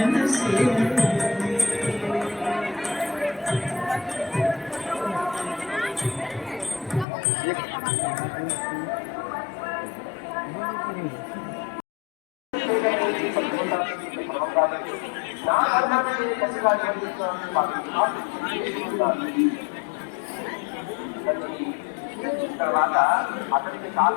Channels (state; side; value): drops out; right; at 7.1 s